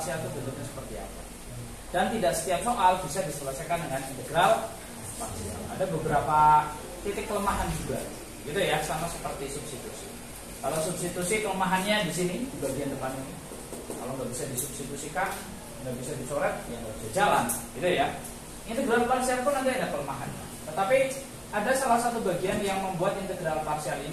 itu bentuknya seperti apa. Dan tidak setiap soal bisa diselesaikan dengan integral parsial. Ada beberapa titik kelemahan juga. Gitu ya, sama seperti substitusi. Kalau substitusi kelemahannya di sini di bagian depan ini. Kalau nggak bisa disubstitusikan, nggak bisa dicoret, ya nggak bisa jalan, gitu ya. Integral parsial pun nanti ada kelemahannya. Tetapi ada salah satu bagian yang membuat integral parsial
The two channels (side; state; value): both; identical; correlation 1.00